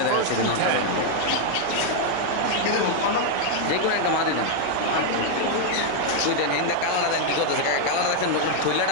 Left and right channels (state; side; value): different; both; correlation 0.00